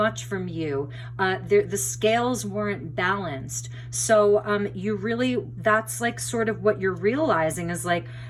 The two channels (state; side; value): identical; both; correlation 1.00